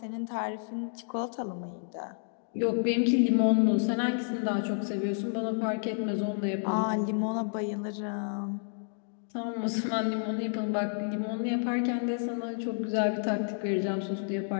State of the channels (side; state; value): right; silent; digital silence